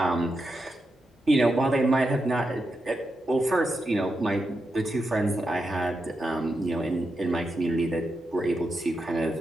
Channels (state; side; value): normal; both; correlation 0.86